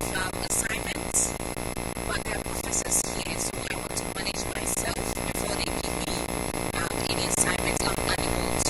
assignments, but there are professors here, so I want to manage myself before they give me any assignments I'm unable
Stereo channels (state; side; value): identical; both; correlation 1.00